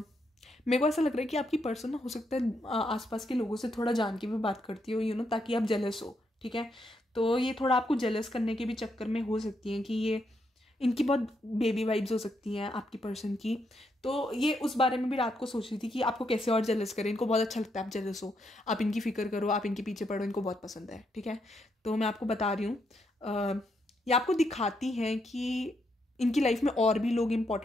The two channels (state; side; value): normal; both; correlation 0.79